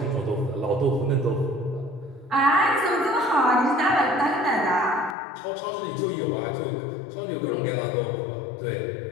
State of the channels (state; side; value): drops out; right; at 5.2 s